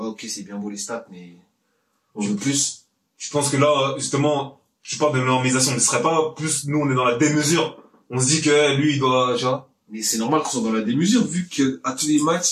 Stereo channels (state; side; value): identical; both; correlation 1.00